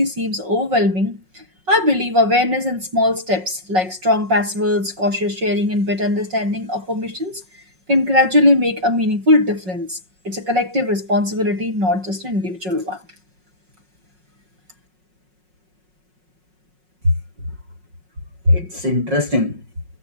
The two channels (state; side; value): late; left; 5.4 ms